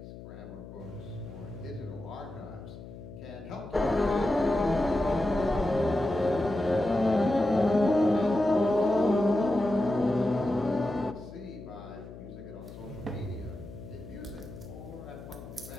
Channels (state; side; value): noise; left; hum, 14 dB below the sound